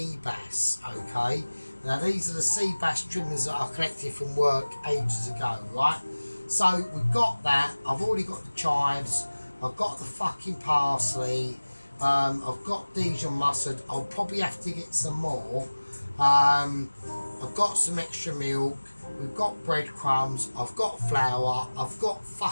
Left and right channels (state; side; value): inverted; both; correlation -1.00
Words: bass. Okay, now these are the sea bass trimmings that I collected from work ages ago, right? So we've got that. I've already got the chives. I've got the fucking parsley. I've got Dijon mustard. I'll probably have to get some more. I've got some extra milk. We've got breadcrumbs. I've got flour. I've got